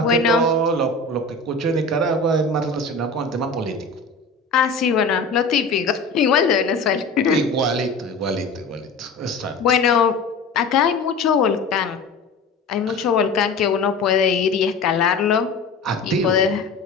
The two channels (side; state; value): right; quieter; 3.7 dB